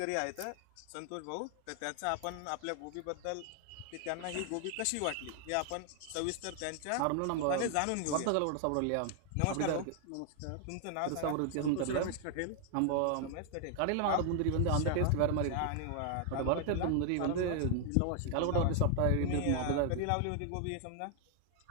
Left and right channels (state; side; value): different; both; correlation 0.00